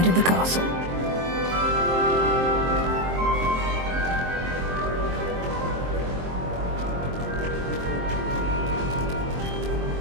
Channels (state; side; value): late; left; 23 ms